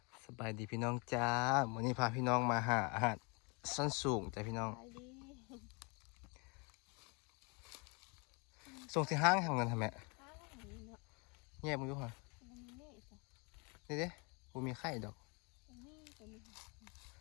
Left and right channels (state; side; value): quieter; right; 31.3 dB